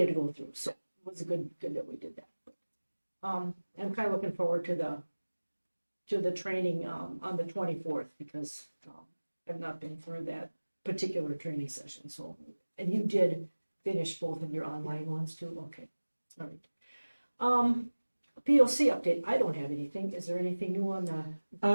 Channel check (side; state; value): both; inverted; correlation -1.00